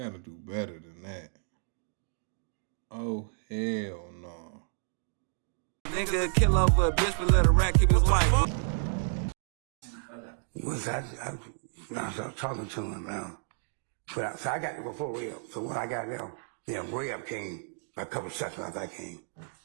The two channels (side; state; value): left; silent; digital silence